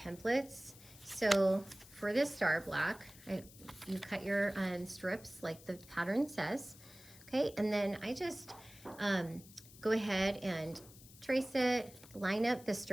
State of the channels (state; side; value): noise; left; hiss, 20 dB below the sound